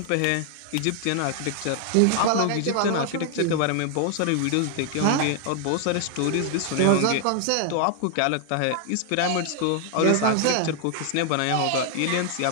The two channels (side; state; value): both; different; correlation 0.00